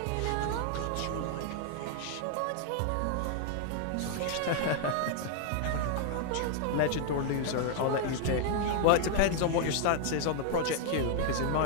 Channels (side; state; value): both; different; correlation 0.00